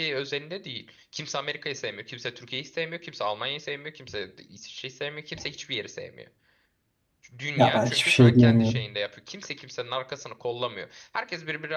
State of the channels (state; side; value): identical; both; correlation 1.00